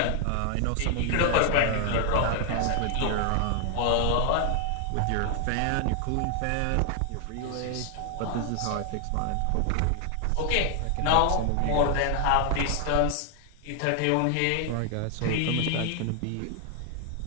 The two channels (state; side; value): different; both; correlation 0.00